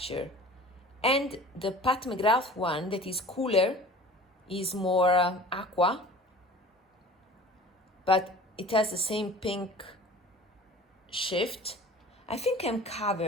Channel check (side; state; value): both; normal; correlation 0.43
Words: and the Pat McGrath one that is cooler, is more aqua, but it has the same pink shift. I think I'm